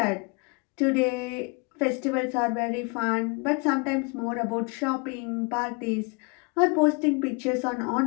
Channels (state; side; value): quieter; right; 31.7 dB